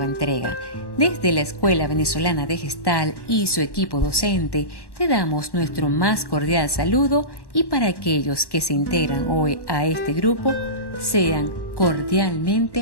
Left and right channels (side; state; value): right; late; 1.1 ms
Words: entrega. Desde la Escuela Venezolana de Gestalt y su equipo docente te damos nuestro más cordial saludo y para aquellos que se integran hoy a este grupo, sean